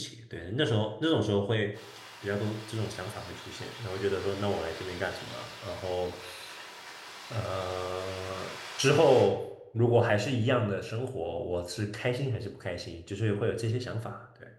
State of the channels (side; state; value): both; identical; correlation 1.00